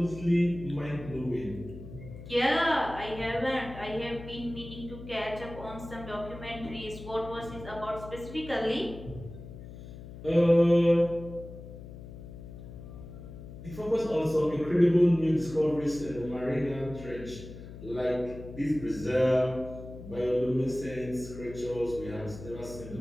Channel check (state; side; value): noise; left; hum, 13 dB below the sound